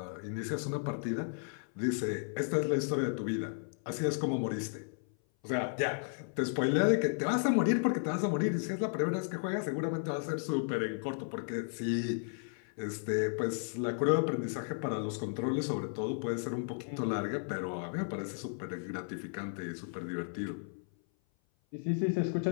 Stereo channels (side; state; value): right; silent; 55 dB below the other